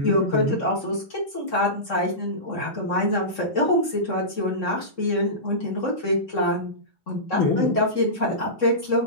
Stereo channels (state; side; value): late; right; 3.7 ms